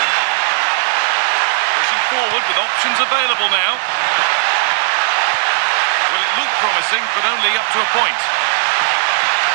Pushing forward with options available now. Well, it looked promising, but only up to a point.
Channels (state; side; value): silent; left; digital silence